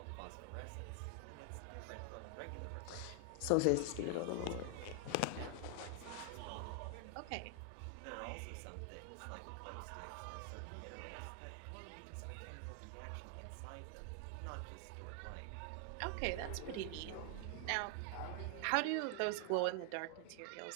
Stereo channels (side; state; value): both; different; correlation 0.00